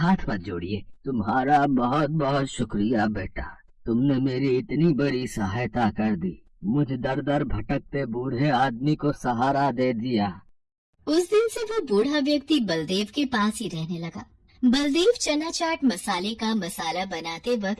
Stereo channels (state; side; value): identical; both; correlation 1.00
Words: मत जोड़िए। तुम्हारा बहुत बहुत शुक्रिया बेटा, तुमने मेरी इतनी बड़ी सहायता कर दी, मुझे दर दर भटकते बूढ़े आदमी को सहारा दे दिया। उस दिन से वो बूढ़ा व्यक्ति बलदेव के पास ही रहने लगा। बलदेव चना चाट मसाले का मसाला बनाते